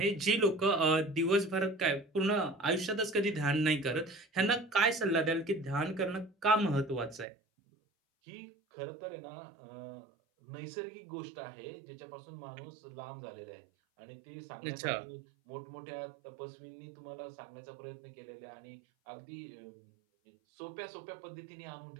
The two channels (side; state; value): left; drops out; at 7.2 s